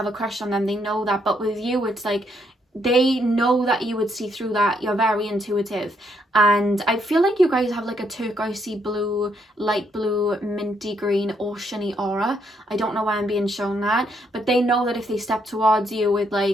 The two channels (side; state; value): both; normal; correlation 0.74